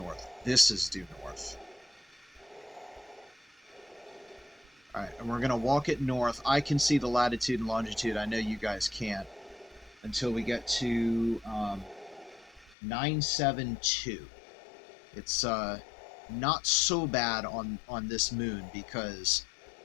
This is due north. Alright, and we're going to walk it north. I can see the latitude and longitude. I know you guys can't. Until we get to 972. It's not so bad on this moon, because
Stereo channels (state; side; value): drops out; right; at 12.8 s